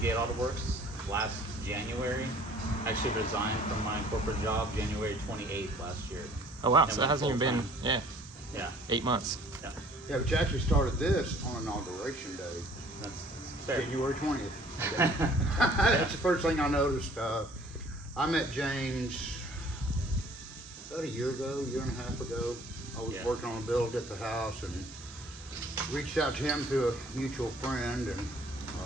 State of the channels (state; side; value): normal; both; correlation 0.55